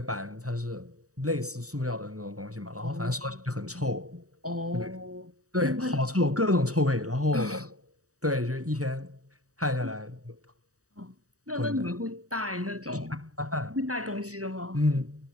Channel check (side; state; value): left; late; 0.66 ms